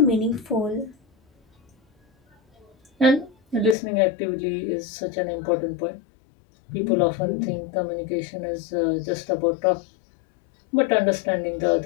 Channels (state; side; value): drops out; right; at 3.8 s